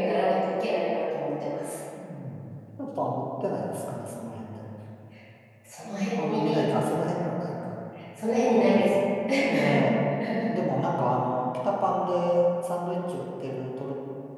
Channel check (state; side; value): identical; both; correlation 1.00